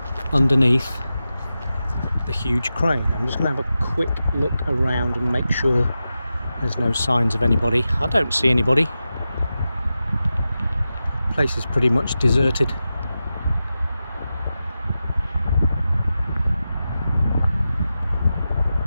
underneath the huge crane. I'm just going to have a quick look around and make sure there's no signs of anybody. I don't see anybody. The place is pretty much deserted.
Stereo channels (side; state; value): both; inverted; correlation -0.92